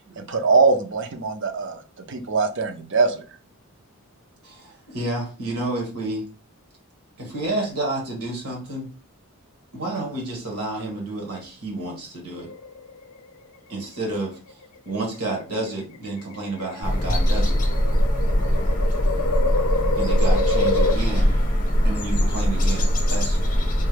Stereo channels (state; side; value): normal; both; correlation 0.45